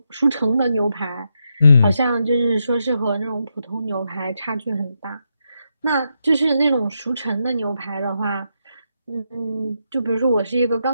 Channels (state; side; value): inverted; both; correlation -0.82